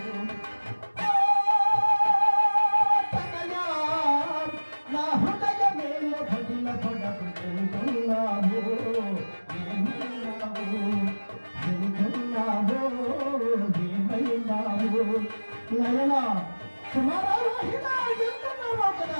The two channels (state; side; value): inverted; both; correlation -1.00